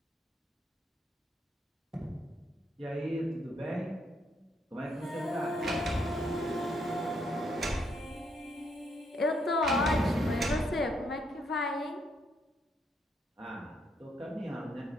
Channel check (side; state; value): both; normal; correlation 0.74